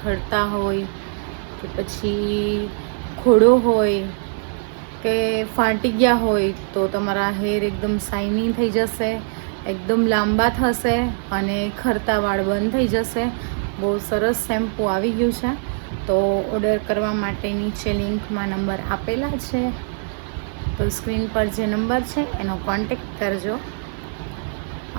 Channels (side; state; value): left; silent; 57 dB below the other